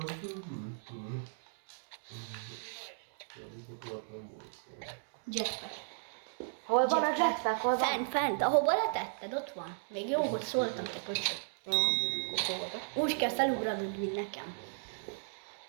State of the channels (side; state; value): left; silent; digital silence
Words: Jetpack. Hol van a jetpack? Hol van? Fent, ahova letetted, ott van. Még jó, hogy szóltam te köcsög. Jó, akkor oda. Úgy kell felugranod, mint nekem.